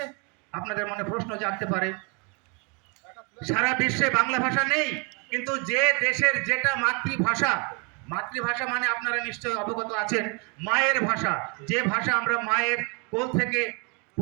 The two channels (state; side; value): quieter; left; 33.7 dB